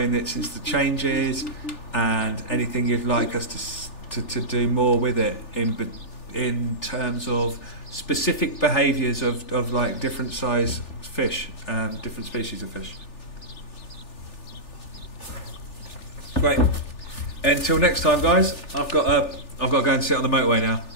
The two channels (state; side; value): late; right; 3.4 ms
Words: it since the changes, and anything you'd like us to do more with it in terms of specific behaviours of like different size fish, different species of fish. Great. Until next time, guys. I've got to go and sit on the motorway now.